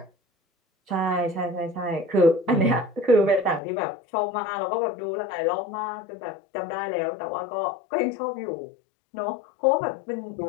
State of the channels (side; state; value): right; drops out; at 3.6 s